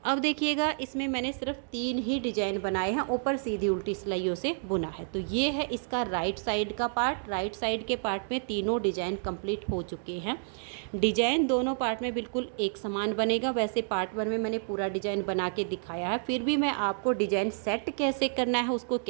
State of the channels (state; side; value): silent; left; digital silence